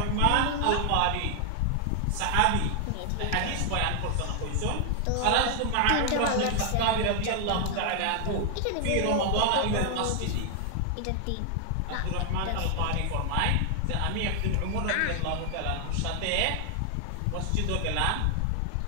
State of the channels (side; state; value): both; different; correlation 0.00